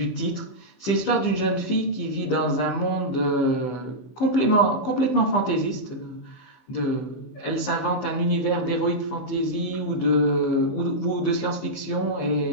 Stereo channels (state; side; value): late; right; 15 ms